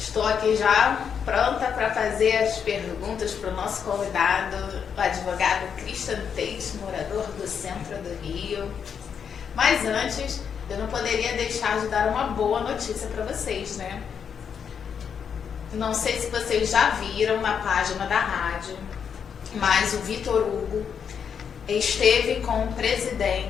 aqui já pronta para fazer as perguntas para o nosso convidado, o advogado Christian Tate, morador do centro do Rio. Mas antes, eu não poderia deixar de dar uma boa notícia para vocês, né? Não sei se vocês já viram na página da rádio, mas o Vitor Hugo esteve com o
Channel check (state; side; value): quieter; right; 7.2 dB